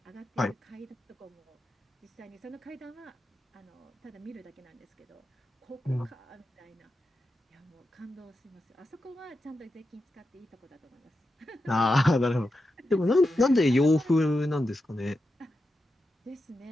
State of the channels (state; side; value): normal; both; correlation 0.89